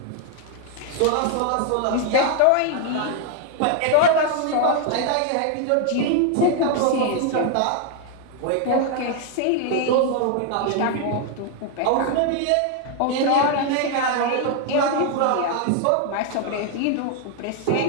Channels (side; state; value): both; different; correlation 0.00